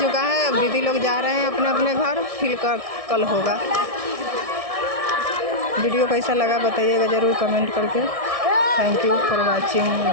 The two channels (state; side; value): late; left; 1.6 ms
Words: है। अब दीदी लोग जा रहे हैं अपने अपने घर, फिर कल होगा। वीडियो कैसा लगा बताइएगा ज़रूर कमेंट करके। Thank you for watching,